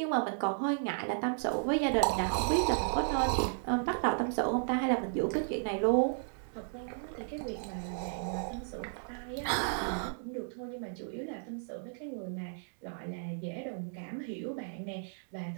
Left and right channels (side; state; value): left; silent; digital silence